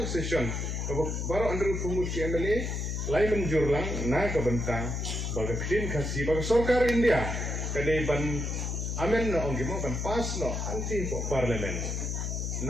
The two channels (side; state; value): left; noise; hum, 2 dB below the sound